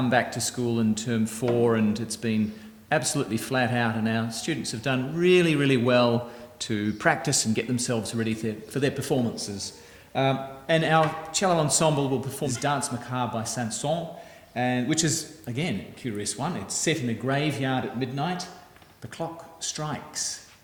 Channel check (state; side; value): identical; both; correlation 1.00